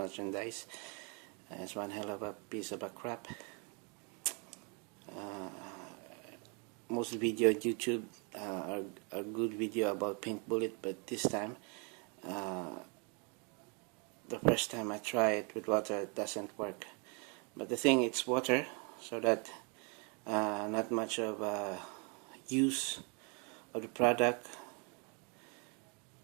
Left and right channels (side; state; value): left; quieter; 35.1 dB